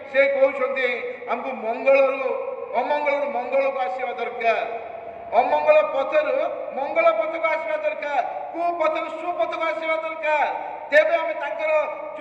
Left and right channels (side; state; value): both; identical; correlation 1.00